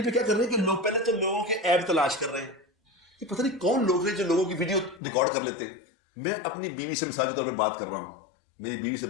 پہ کیا کر رہے ہیں کہ لوگ پہلے تو لوگوں کے ایپ تلاش کر رہے ہیں، یہ پتہ نہیں کون لوگ ہیں جو لوگوں کی ویڈیو ریکارڈ کر لیتے ہیں۔ میں اپنی بیوی سے مثال کے طور پر بات کر رہا ہوں، میری بیوی سے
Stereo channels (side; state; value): right; drops out; at 5.0 s